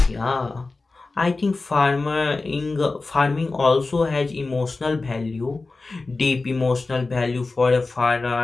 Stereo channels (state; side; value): quieter; right; 3.6 dB